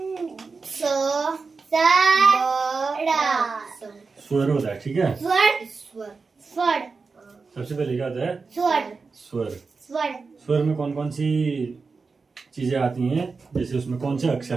स्वर होता है। ठीक है, स्वर। सबसे पहले क्या होता है? स्वर। स्वर। स्वर में कौन कौन सी चीजें आती हैं? जैसे उसमें कौन से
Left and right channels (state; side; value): quieter; left; 4.5 dB